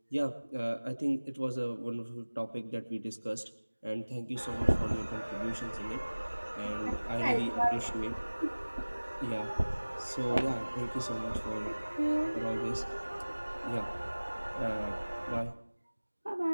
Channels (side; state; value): both; inverted; correlation -1.00